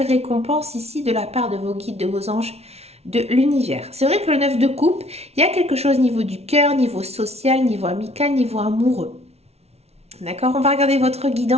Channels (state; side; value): late; left; 0.31 ms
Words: récompense ici de la part de vos guides, de vos anges, de l'univers. C'est vrai que le 9 de coupe, il y a quelque chose au niveau du cœur, niveau social, niveau amical, niveau amoureux. D'accord? On va regarder votre